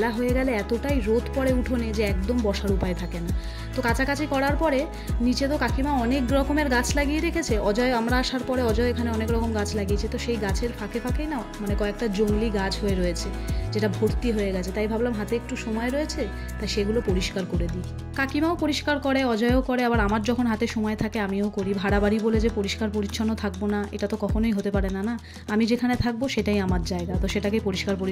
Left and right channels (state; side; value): identical; both; correlation 1.00